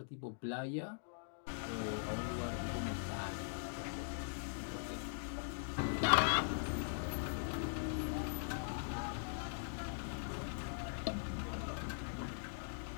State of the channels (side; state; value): right; silent; digital silence